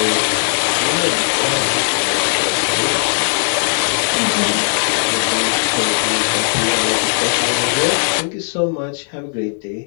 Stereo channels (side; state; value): right; silent; digital silence